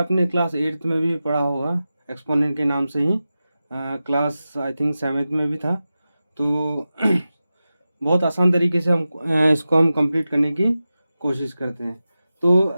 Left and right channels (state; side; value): inverted; both; correlation -0.93